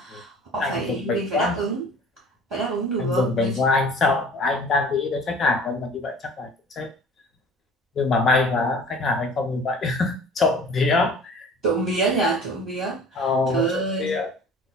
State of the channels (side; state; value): both; normal; correlation 0.46